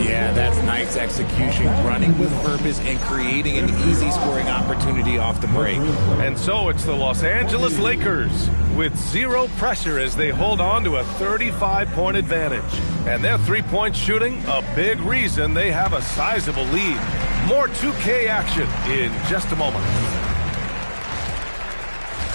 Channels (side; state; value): both; inverted; correlation -1.00